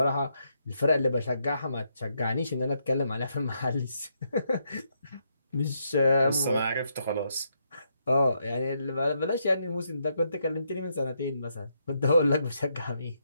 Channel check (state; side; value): inverted; both; correlation -0.78